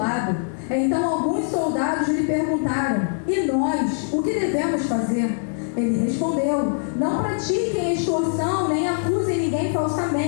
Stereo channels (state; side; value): silent; right; digital silence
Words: Então alguns soldados lhe perguntaram: E nós, o que devemos fazer? Ele respondeu: Não pratiquem extorsão, nem acusem ninguém